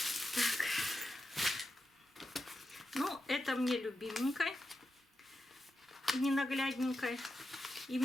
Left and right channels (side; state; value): both; normal; correlation 0.89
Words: Так. Ну, это мне любименькой, ненаглядненькой. И у